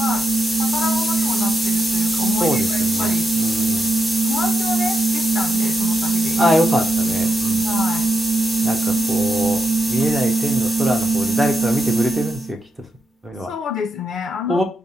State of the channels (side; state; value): both; normal; correlation 0.85